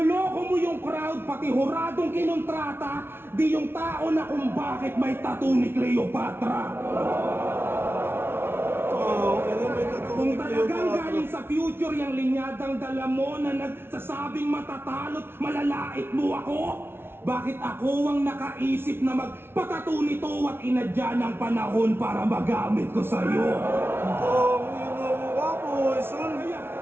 mo yung crowd, pati huradong kinontrata. Di yung tao na kung bakit may tattoo ni Cleopatra. Kung talagang galing sa future yung linyadang dala mo na nagsasabing matatalot, malalait mo ako? Bakit ako ang nakaisip na magpatato nito at inadya ng panahon para magamit ko sa'yo?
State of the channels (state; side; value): late; left; 0.11 ms